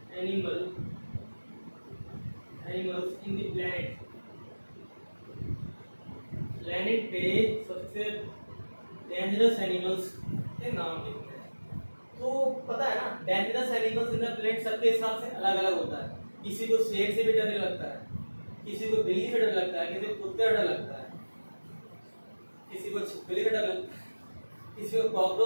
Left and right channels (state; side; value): inverted; both; correlation -1.00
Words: animals in the planet पे सबसे डेंजरस एनिमल्स के नाम लिखते हैं। तो पता है ना, dangerous animals in the planet सबके हिसाब से अलग अलग होता है। किसी को शेर से भी डर लगता है, किसी को बिल्ली से डर लगता है, किसी को कुत्ते से डर लगता है, किसी को छिपकली से डर लगता है, किसी को